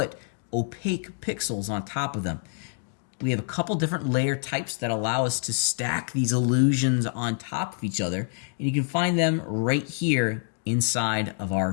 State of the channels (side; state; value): right; silent; 60 dB below the other